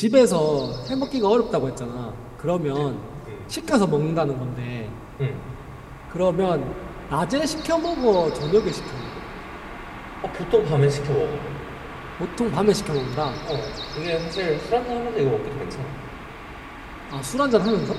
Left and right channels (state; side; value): identical; both; correlation 1.00